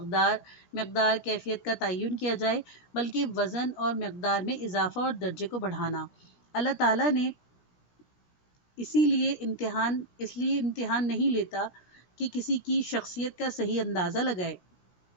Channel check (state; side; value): late; right; 17 ms